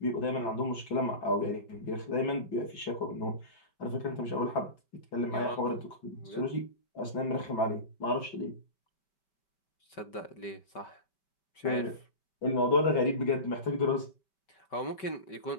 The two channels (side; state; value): right; late; 5.2 ms